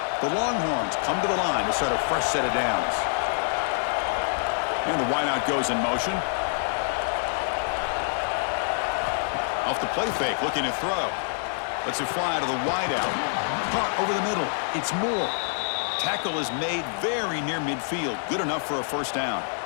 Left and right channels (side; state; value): right; silent; digital silence